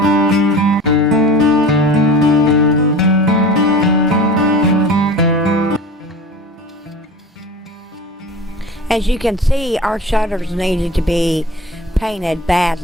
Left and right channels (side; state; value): both; normal; correlation 0.38